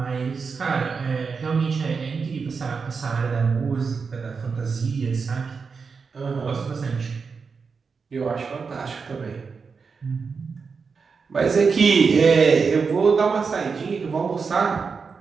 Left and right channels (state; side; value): quieter; left; 5.2 dB